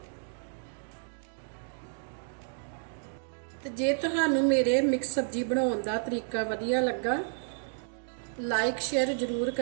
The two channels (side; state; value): left; silent; digital silence